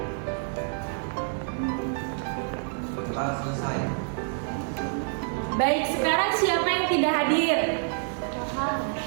Doa selesai. Baik, sekarang siapa yang tidak hadir?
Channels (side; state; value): left; silent; 60 dB below the other